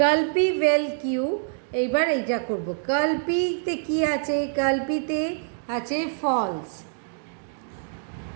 পি ভ্যাল কিউ। এইবার এইটা করব, কার্ল পিতে কী আছে কার্ল পিতে আছে ফলস,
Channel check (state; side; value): silent; left; digital silence